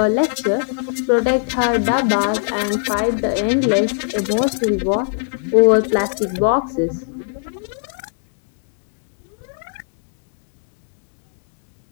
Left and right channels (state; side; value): silent; right; digital silence